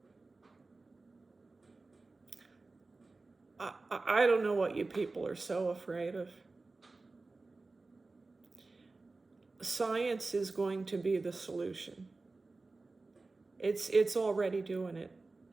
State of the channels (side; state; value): left; quieter; 3.5 dB